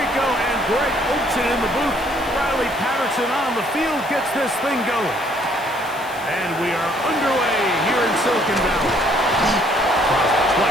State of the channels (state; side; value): noise; left; hiss, 19 dB below the sound